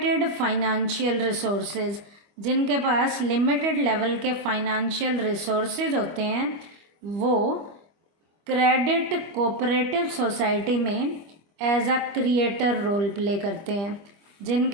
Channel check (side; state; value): left; late; 25 ms